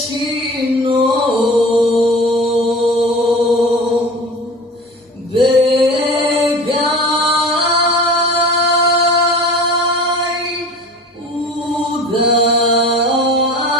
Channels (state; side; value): normal; both; correlation 0.38